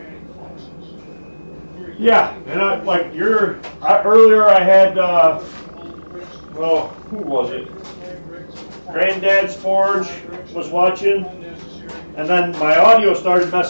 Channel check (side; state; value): both; inverted; correlation -1.00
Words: fluxes. Yeah, and earlier I had, well, who was it? Granddad's Forge was watching, and then my audio started